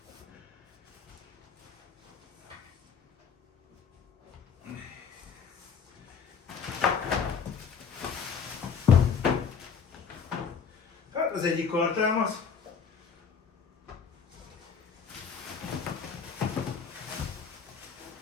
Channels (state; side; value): quieter; right; 6.3 dB